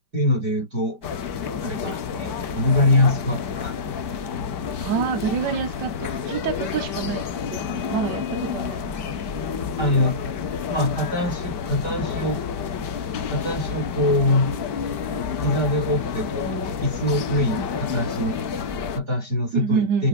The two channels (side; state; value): left; late; 5.1 ms